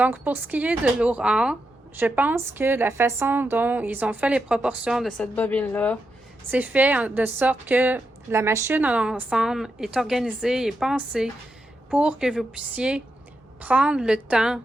pour ce qui est de l'Aura, je pense que la façon dont ils ont fait les proportions de cette bobine-là, c'est fait de sorte que la machine en ensemble est organisée et pensée pour que vous puissiez prendre le temps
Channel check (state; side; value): normal; both; correlation 0.85